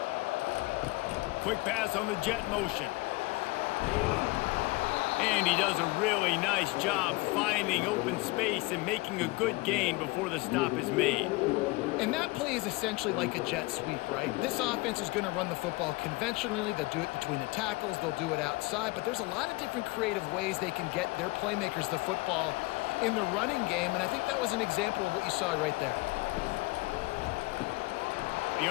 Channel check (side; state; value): right; quieter; 23.1 dB